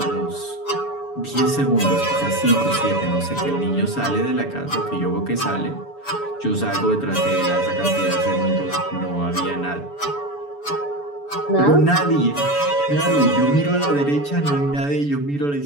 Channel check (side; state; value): right; late; 7.0 ms